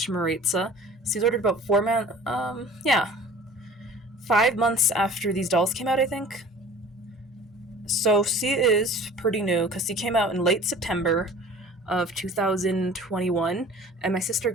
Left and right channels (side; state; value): both; normal; correlation 0.45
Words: Maritza. She's ordered about 5 months after these dolls came out, I think. So she is pretty new, because she came out in late September of 2021, and my sister